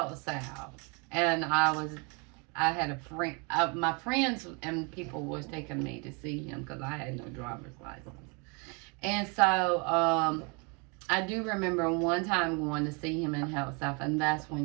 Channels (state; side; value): quieter; left; 32.3 dB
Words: South, and I had a friend, my friends and people was taking me to see him because I had no driver's license. And so I do remember one time going to see him in Health South, and that's